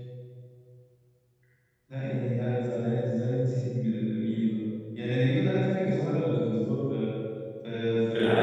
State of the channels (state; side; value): identical; both; correlation 1.00